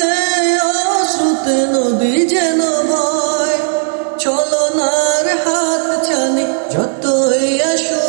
অশ্রুতে নদী যেন বয়। ছলনার হাত ছানি যতই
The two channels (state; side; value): silent; left; digital silence